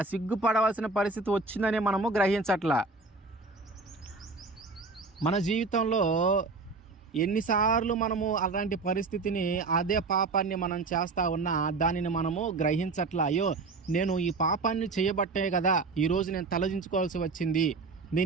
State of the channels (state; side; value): quieter; left; 3.9 dB